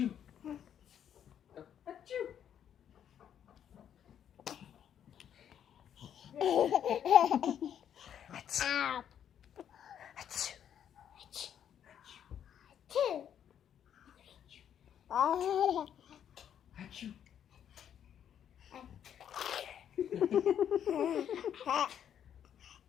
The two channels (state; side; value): quieter; right; 9.3 dB